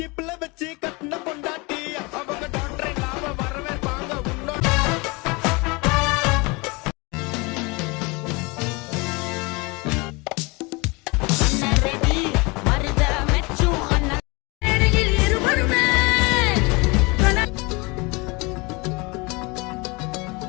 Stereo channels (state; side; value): quieter; right; 26.8 dB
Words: வச்சு கட்டின பொண்டாட்டி அவங்க டாக்டர் இல்லாம வரவே வாங்க உன்னோட